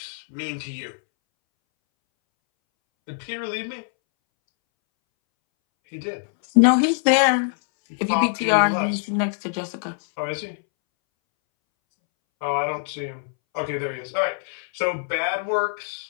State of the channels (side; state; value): right; silent; 63 dB below the other